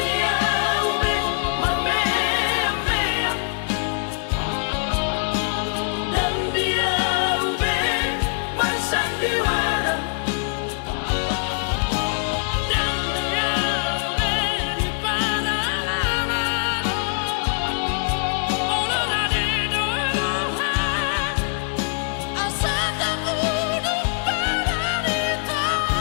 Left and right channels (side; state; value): right; silent; digital silence